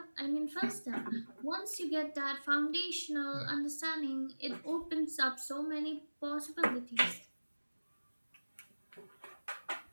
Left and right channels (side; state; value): both; inverted; correlation -1.00